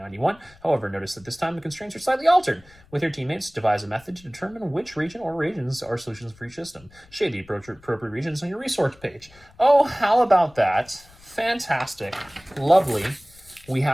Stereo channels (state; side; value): noise; left; rumble, 26 dB below the sound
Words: However, notice that this time the constraints are slightly altered. With your teammates, devise a method to determine which region or regions are solutions for each system. Shade the appropriate regions on your resource page. Oh, how about that? Fantastic. Lovely. We